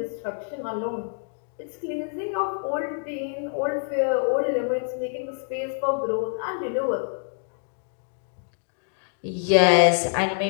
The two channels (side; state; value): right; silent; digital silence